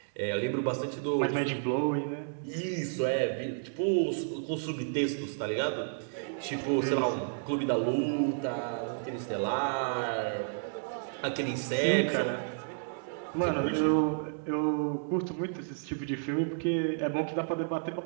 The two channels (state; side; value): silent; left; digital silence